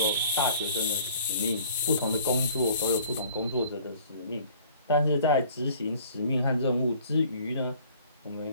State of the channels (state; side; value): inverted; both; correlation -0.53